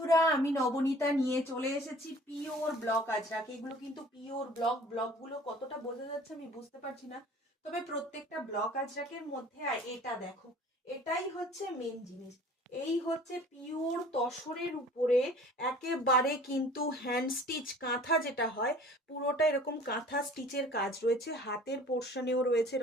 আমি নবনীতা নিয়ে চলে এসেছি পিওর ব্লক আজরাক। এগুলো কিন্তু পিওর ব্লকগুলো কতটা বোঝা যাচ্ছে আমি বুঝতে পারছি না, তবে প্রত্যেকটা ব্লক আজরাকের মধ্যে এটা দেখো, এটাই হচ্ছে মেন জিনিস। এই হচ্ছে পিওর তসরের উপরে একেবারে কিন্তু হ্যান্ড স্টিচ কাঁথা যেটা হয়, পুরোটা এরকম কাঁথা স্টিচের কাজ রয়েছে, হাতের পোর্শনেও রয়েছে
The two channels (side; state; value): both; normal; correlation 0.48